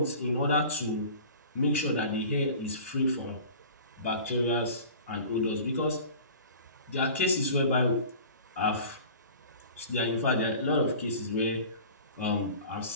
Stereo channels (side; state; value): both; inverted; correlation -0.41